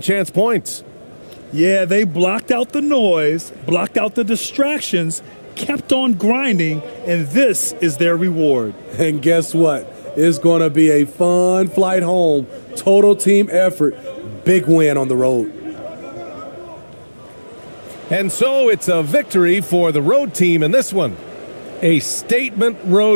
chance points. Yeah, they blocked out the noise, blocked out the distractions, kept on grinding, and this is their reward. And guess what? It's going to be a fun flight home. Total team effort. Big win on the road. And so it's a victory for the road team in this one. A statement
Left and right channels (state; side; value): inverted; both; correlation -1.00